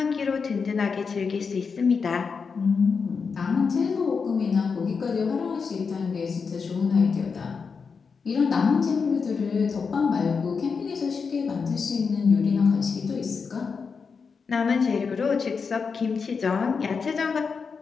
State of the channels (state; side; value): quieter; right; 5.4 dB